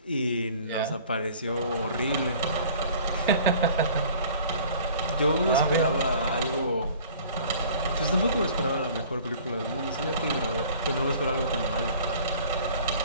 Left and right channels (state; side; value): inverted; both; correlation -0.49